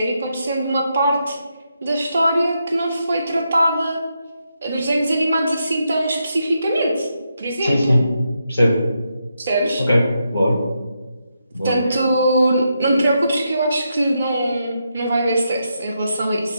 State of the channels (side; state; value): both; inverted; correlation -0.83